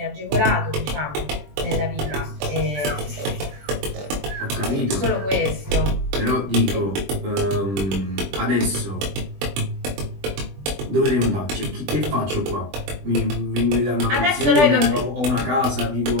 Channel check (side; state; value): left; late; 20 ms